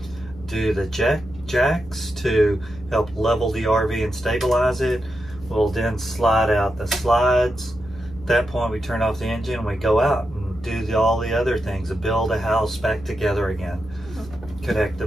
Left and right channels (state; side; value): normal; both; correlation 0.87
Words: do the jacks to help level the RV and stabilize it. We'll then slide out the slides. At that point, we turn off the engine and we go out and do all the other things, to build a house back together again. Connect